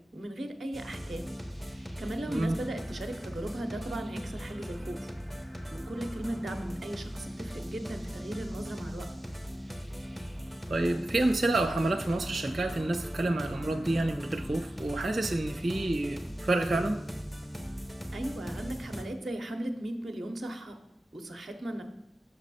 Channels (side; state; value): both; normal; correlation 0.94